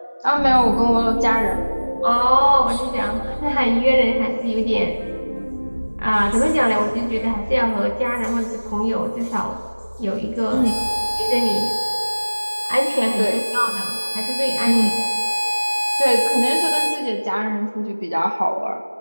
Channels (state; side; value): inverted; both; correlation -1.00